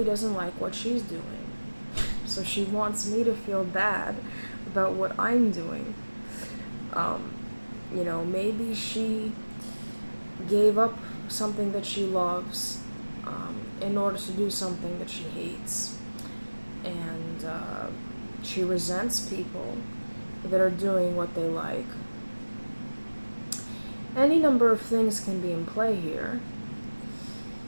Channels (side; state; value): both; inverted; correlation -1.00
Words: doesn't like what she's doing, so she wants me to feel bad about what I'm doing. Maybe she gave up something that she loves in order to do something that she hates. And she resents people that are doing what they like. Any number of things can be in play here.